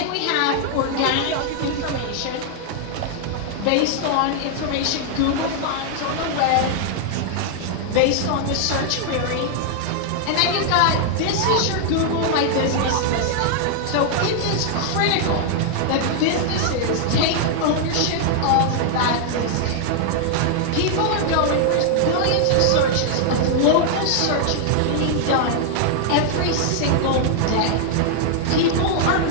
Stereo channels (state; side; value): different; both; correlation 0.00